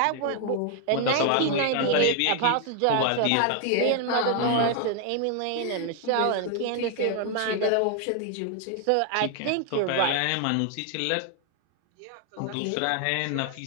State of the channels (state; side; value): different; both; correlation 0.00